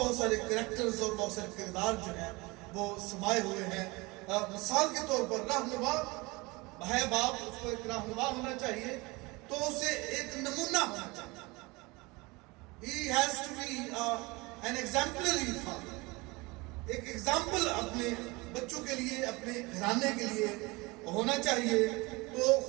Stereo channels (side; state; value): left; quieter; 24.4 dB